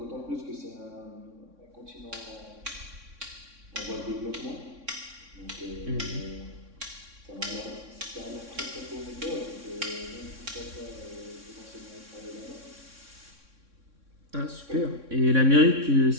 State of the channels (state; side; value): late; left; 3.6 ms